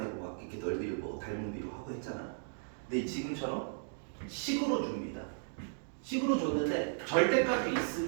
막 이렇게 넓이를 뭐 닮은 비로 하고 했잖아. 근데 지금처럼 식으로 줍니다. 식으로 줬는데 절대값이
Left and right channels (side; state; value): left; silent; digital silence